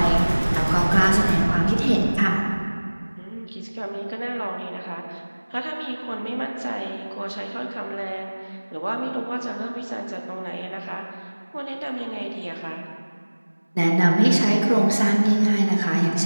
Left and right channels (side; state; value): both; inverted; correlation -1.00